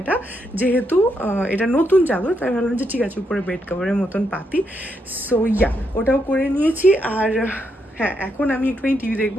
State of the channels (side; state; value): both; normal; correlation 0.80